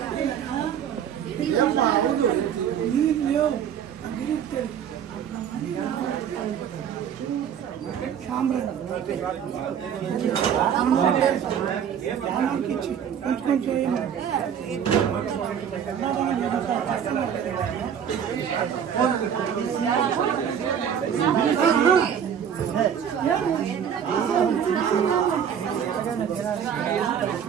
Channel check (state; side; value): quieter; left; 8.4 dB